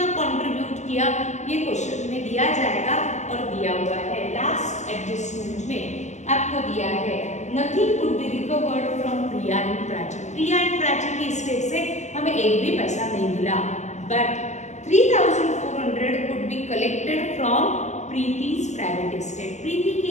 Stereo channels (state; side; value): late; right; 0.34 ms